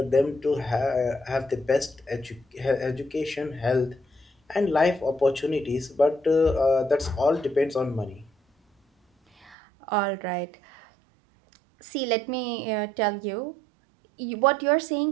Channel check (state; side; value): drops out; left; at 9.6 s